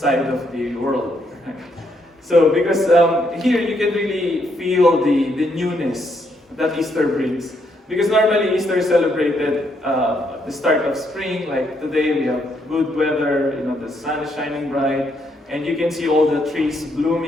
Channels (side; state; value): both; normal; correlation 0.74